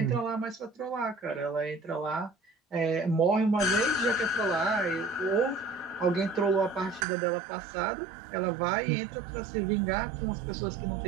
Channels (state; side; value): drops out; left; at 7.1 s